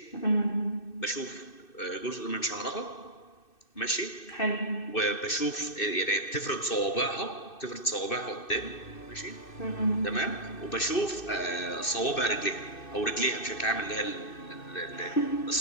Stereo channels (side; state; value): right; late; 2.6 ms